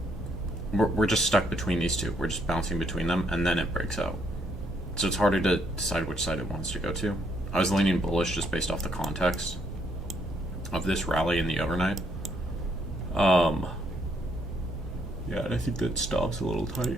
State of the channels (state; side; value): normal; both; correlation 0.71